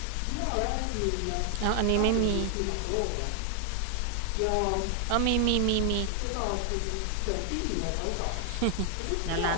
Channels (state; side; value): different; both; correlation 0.00